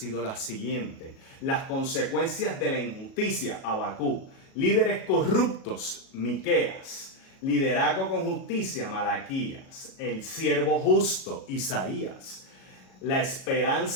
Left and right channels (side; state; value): right; late; 37 ms